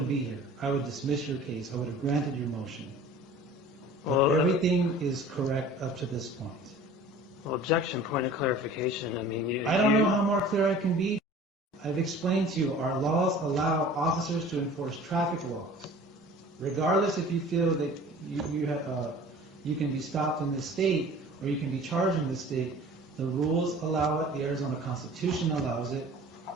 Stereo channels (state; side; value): normal; both; correlation 0.44